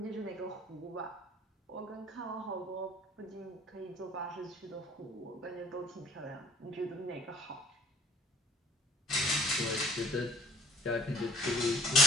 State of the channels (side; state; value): both; normal; correlation 0.52